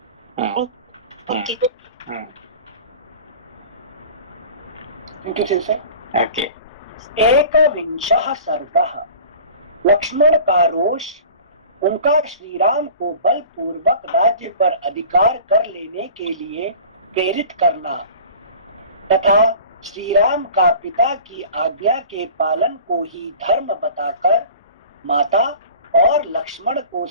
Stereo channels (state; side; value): inverted; both; correlation -0.41